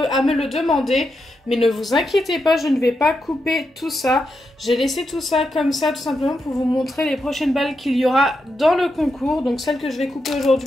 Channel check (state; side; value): normal; both; correlation 0.85